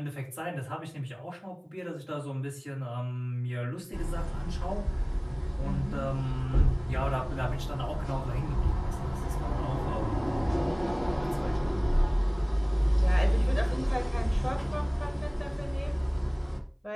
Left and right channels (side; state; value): both; identical; correlation 1.00